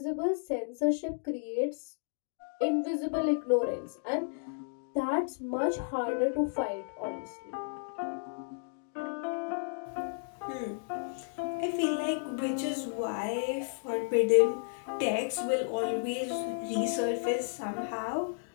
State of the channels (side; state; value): right; silent; digital silence